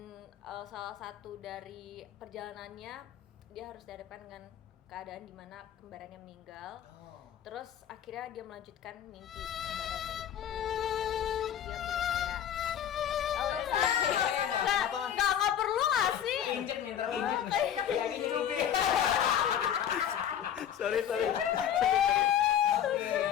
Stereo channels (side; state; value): right; quieter; 9.8 dB